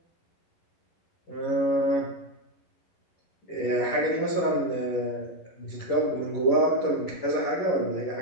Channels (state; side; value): late; right; 11 ms